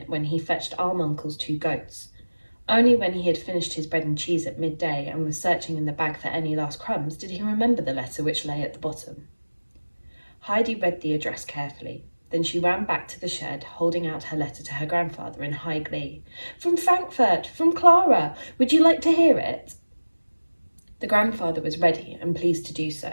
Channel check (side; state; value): both; inverted; correlation -1.00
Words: when he fetched Alm Uncle's 2 goats. Only when he had finished his bread and cheese at midday and was searching in the bag for any last crumbs did he remember the letter which lay at the bottom. Heidi read the address carefully. Then she ran back to the shed, holding out her letter to her grandfather in high glee. "From Frankfurt, from Clara. Would you like to hear it?" The grandfather was ready and pleased to do